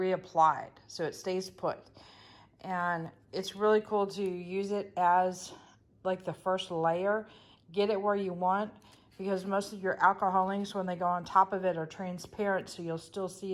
so it stays put. And it's really cool to use it as like the first layer. Get it where you want, because most of your alcohol inks, when they go on top of it, are transparent, so you'll still see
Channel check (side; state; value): both; identical; correlation 1.00